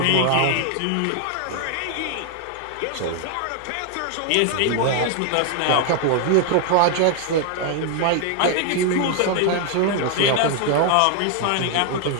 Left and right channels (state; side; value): different; both; correlation 0.00